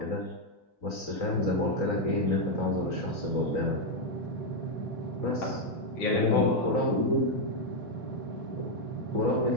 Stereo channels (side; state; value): right; late; 3.9 ms